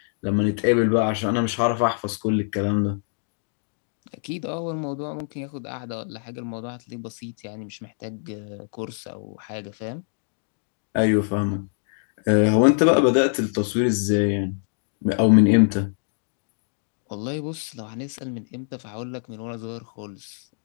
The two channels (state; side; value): silent; right; 62 dB below the other